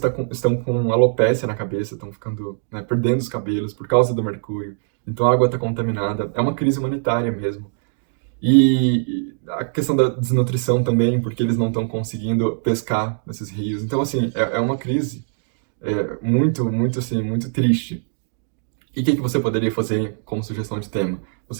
estão com alopécia na cabeça, estão ficando, né, perdendo os cabelos por causa do mercúrio. Então a água está contaminada. É uma crise humanitária mesmo. E a questão da desnutrição também, porque eles não estão conseguindo pescar nesses rios. Então, assim, é uma crise muito, muito, assim, muito triste. E o que você poderia fazer como sugestão de tema?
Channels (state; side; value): silent; left; digital silence